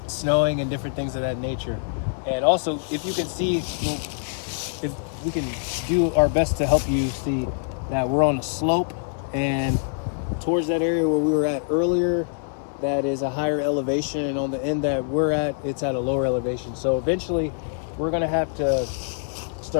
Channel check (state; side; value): silent; right; 60 dB below the other